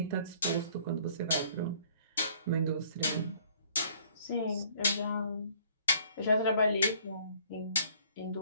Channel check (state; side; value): inverted; both; correlation -0.58